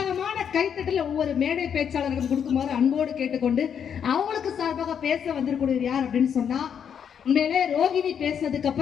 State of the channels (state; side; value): quieter; right; 8.0 dB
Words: கைத்தட்டல ஒவ்வொரு மேடை பேச்சாளர்களும் கொடுக்குமாறு அன்போடு கேட்டுக்கொண்டு அவங்களுக்கு சார்பாக பேச வந்திருக்கக்கூடியவர் யார் அப்படின்னு சொன்னா, உண்மையிலே ரோகிணி பேசுனதுக்கு